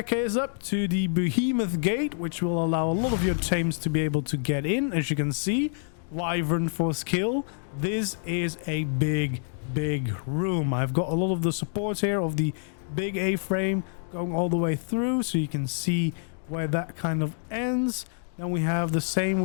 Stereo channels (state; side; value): silent; right; digital silence